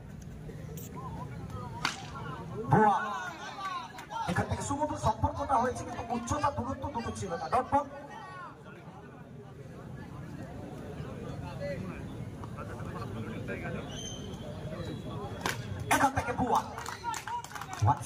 ভুয়া এখান থেকে সুমধুর সম্পর্কটা হয়েছে, কিন্তু উচ্চতা দূরত্ব দুটো ছিল না। ডট বল এখান থেকে ভুয়া।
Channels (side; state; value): both; identical; correlation 1.00